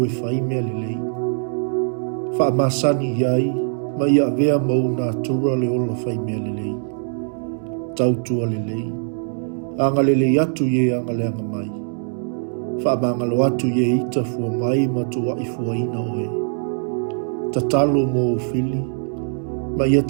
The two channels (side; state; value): left; silent; 61 dB below the other